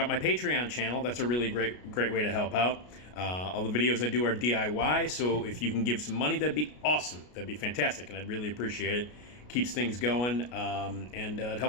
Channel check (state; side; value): late; right; 33 ms